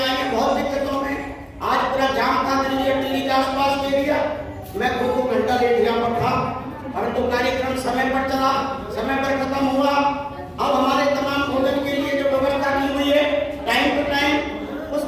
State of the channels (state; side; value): identical; both; correlation 1.00